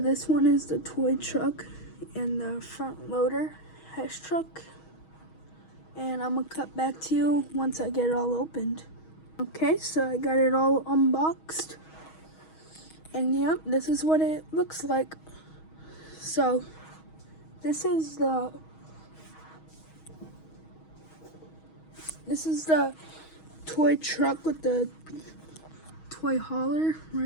one is the toy truck and the front loader Hess truck, and I'm going to cut back to you once I get it all opened. Okay, so I got it all unboxed, and yep, this is what it looks like. So this is the toy truck with the toy hauler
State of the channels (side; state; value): right; late; 6.3 ms